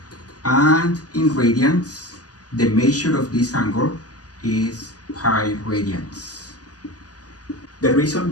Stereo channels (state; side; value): late; right; 0.67 ms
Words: and in radians the measure of this angle is pi radians. The reason